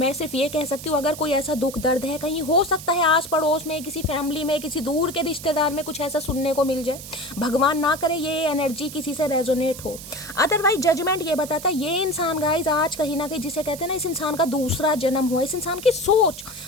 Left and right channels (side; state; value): right; noise; hiss, 13 dB below the sound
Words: सिर्फ ये कह सकती हूँ अगर कोई ऐसा दुख दर्द है, कहीं हो सकता है आस पड़ोस में, किसी फैमिली में, किसी दूर के रिश्तेदार में कुछ ऐसा सुनने को मिल जाए, भगवान ना करे ये एनर्जी किसी से रेजोनेट हो। अदरवाइज जजमेंट ये बताता है ये इंसान गाइज आज कहीं ना कहीं जिसे कहते हैं ना, इस इंसान का दूसरा जन्म हुआ, इस इंसान की सोच,